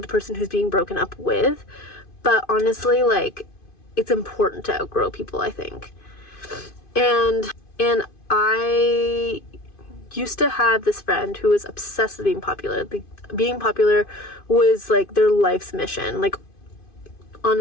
the person who's being broken up with. But honestly, like, it's important to outgrow people, I think. And I used to have this friend who was obsessed with being popular. Like, being popular was like their life's mission, like,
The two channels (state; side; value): late; right; 2.5 ms